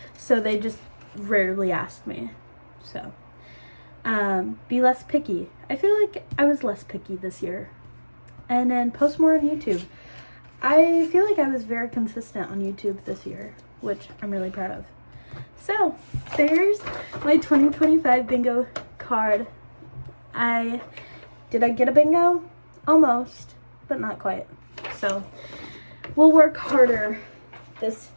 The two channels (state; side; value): inverted; both; correlation -1.00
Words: So they just rarely ask me. So Be less picky. I feel like I was less picky this year. And then post more on YouTube. I feel like I was very consistent on YouTube this year, which I'm really proud of. So, there's my 2025 bingo card. Did I get a bingo? Almost, but not quite. So, we'll work harder this